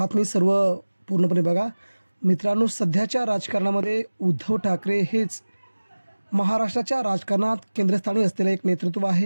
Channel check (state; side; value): inverted; both; correlation -1.00